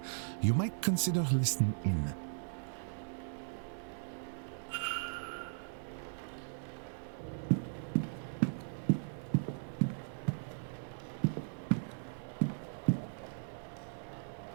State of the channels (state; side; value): silent; left; digital silence